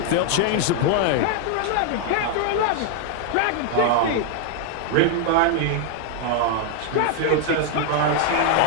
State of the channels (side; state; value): both; different; correlation 0.00